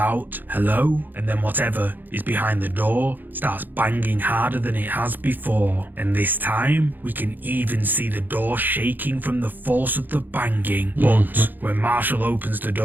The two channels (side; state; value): left; late; 0.088 ms